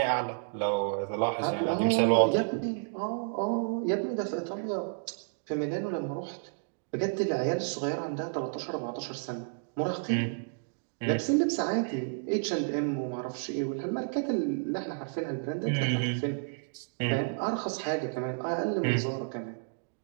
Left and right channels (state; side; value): silent; left; digital silence